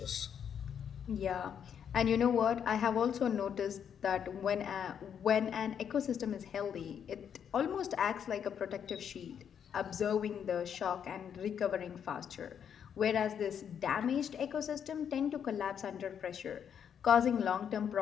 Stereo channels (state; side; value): quieter; right; 8.2 dB